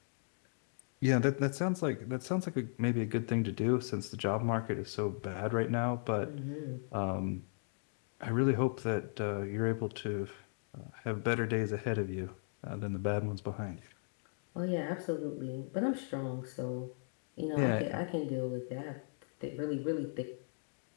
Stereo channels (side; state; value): right; silent; digital silence